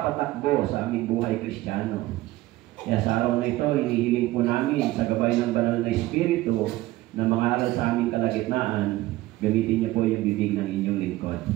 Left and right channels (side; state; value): left; quieter; 17.3 dB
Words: sa aming buhay Kristiyano. Kaya sa araw na ito, hinihiling po namin sa gabay ng Banal na Espiritu na mga aral sa aming kalagitnaan, gamitin niyo po yung bibig ng inyong lingkod.